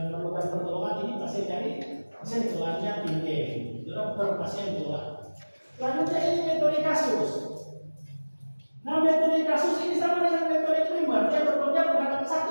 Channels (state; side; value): inverted; both; correlation -1.00